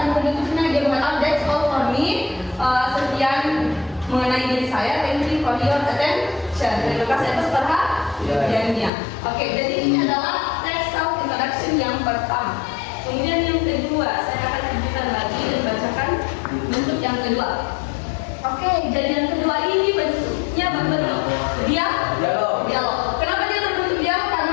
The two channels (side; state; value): right; drops out; at 8.9 s